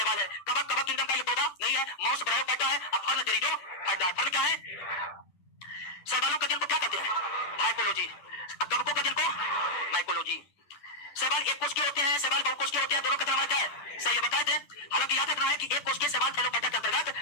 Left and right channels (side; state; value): right; late; 10 ms